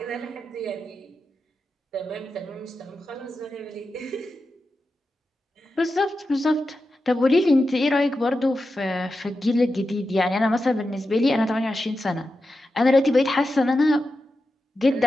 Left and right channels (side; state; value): both; normal; correlation 0.90